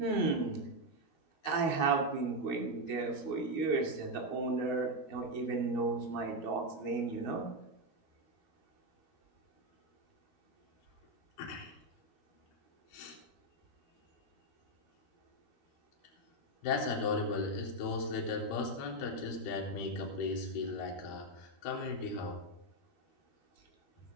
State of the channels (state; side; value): late; right; 12 ms